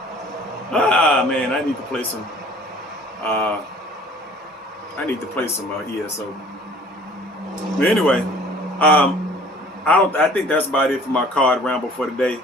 Man, I need to play some ESO. But anyway, I think that's about it for my card ramble for today.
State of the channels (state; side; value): normal; both; correlation 0.51